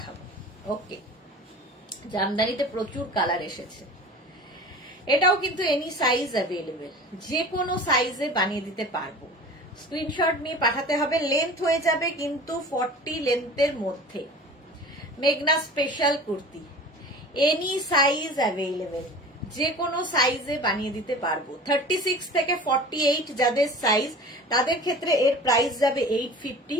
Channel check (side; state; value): both; normal; correlation 0.39